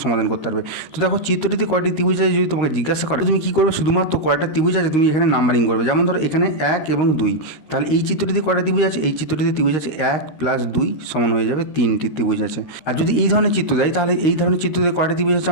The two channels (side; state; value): right; late; 13 ms